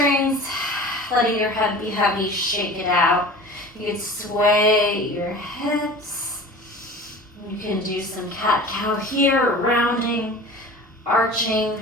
letting your head be heavy, shake it out. You can sway your hips. You can do some cat-cow here, rounding, arching,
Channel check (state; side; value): normal; both; correlation 0.39